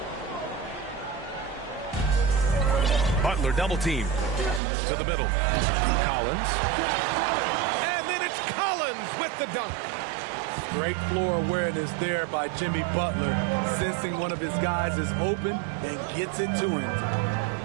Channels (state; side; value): drops out; left; at 4.6 s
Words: Butler double team. To the middle. Collins. And then it's Collins with the dunk. Great floor awareness there by Jimmy Butler, sensing one of his guys is open and gets it to him.